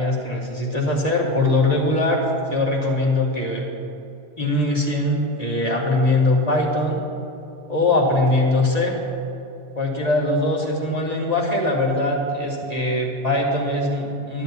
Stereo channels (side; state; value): left; late; 1.9 ms